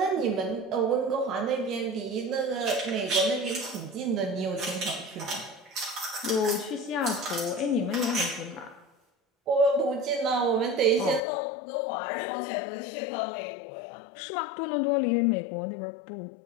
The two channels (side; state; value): right; drops out; at 11.2 s